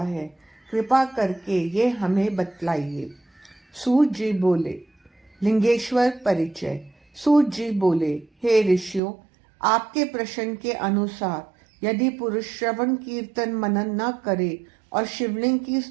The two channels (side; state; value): left; drops out; at 9.0 s